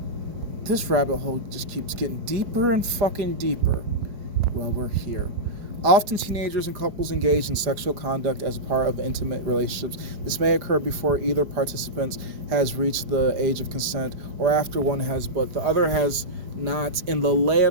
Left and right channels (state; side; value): late; left; 4.9 ms